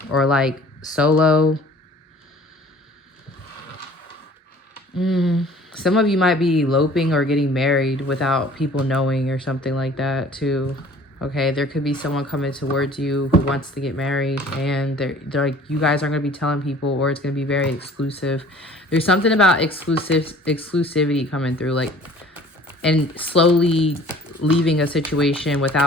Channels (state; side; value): normal; both; correlation 0.50